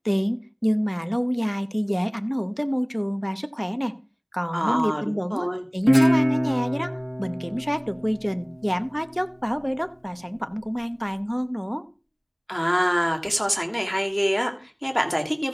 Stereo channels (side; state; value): both; identical; correlation 1.00